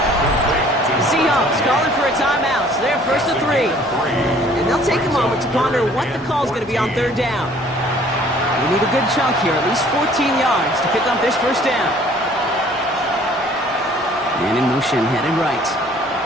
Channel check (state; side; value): normal; both; correlation 0.55